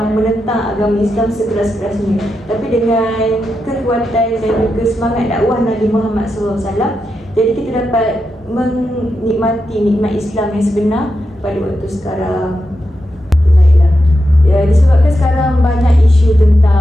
menentang agama Islam sekeras-kerasnya. Tapi dengan kekuatan dan juga semangat dakwah Nabi Muhammad SAW, jadi kita dapat menikmati nikmat Islam yang sebenar pada waktu sekarang. Baiklah. Ya, disebabkan sekarang banyak isu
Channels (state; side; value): normal; both; correlation 0.87